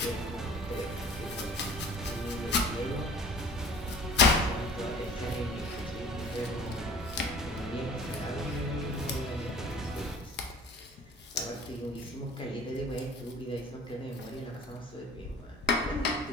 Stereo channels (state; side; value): normal; both; correlation 0.46